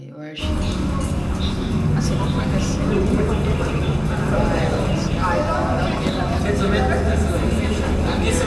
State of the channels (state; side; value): identical; both; correlation 1.00